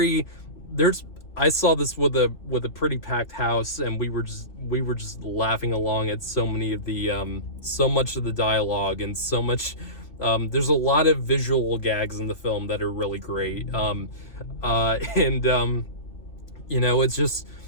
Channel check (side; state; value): right; late; 2.8 ms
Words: I saw this with a pretty packed house, and we were just laughing along at so much of the dialogue, and so much. There's a lot of visual gags in the film that are really great. It